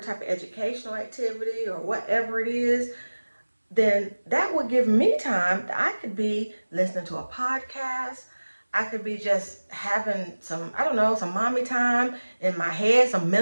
of educational activity or whatever it is, then that would give me time that I could be listening to a podcast. I could be just having some, I don't know, some mommy time in my head, some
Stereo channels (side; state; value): both; inverted; correlation -1.00